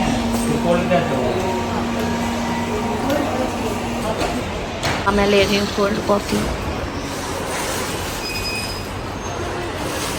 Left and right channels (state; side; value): identical; both; correlation 1.00